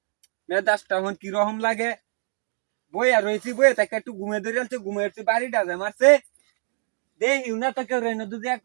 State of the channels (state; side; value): silent; left; 62 dB below the other